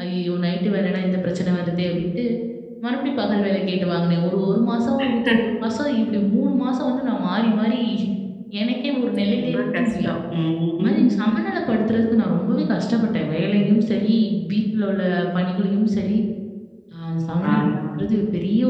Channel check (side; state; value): both; identical; correlation 1.00